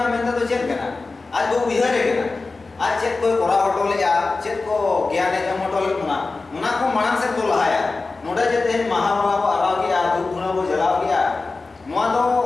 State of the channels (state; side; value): quieter; right; 3.7 dB